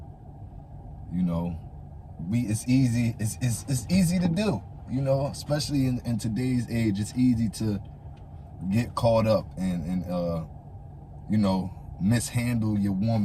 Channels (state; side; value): identical; both; correlation 1.00